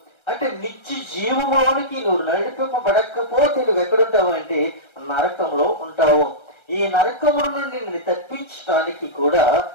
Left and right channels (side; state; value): right; late; 1.3 ms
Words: అంటే నిత్య జీవములోనికి నువ్వు నడిపింపబడకపోతే నువ్వు ఎక్కడుంటావు అంటే నరకంలో ఉంటావు. ఈ నరకముల నుండి నిన్ను తప్పించడానికి కూడా